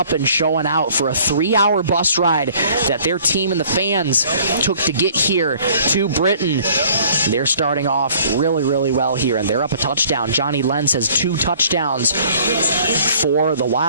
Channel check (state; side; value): inverted; both; correlation -0.55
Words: and showing out for a 3-hour bus ride that their team and the fans took to get here to Britton. They're starting off really, really well here, and they're up a touchdown. Johnny Lenz has 2 touchdowns for the